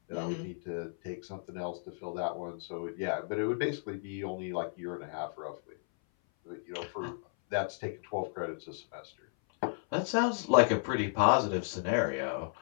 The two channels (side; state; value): right; silent; 55 dB below the other